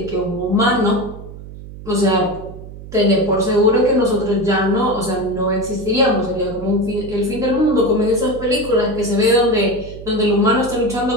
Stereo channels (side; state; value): right; noise; hum, 14 dB below the sound